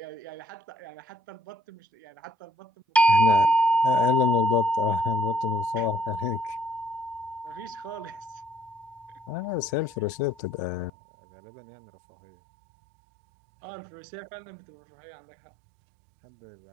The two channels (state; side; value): drops out; left; at 10.9 s